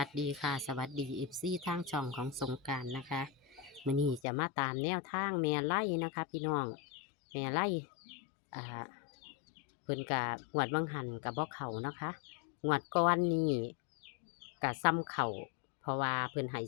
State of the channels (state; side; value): drops out; right; at 4.2 s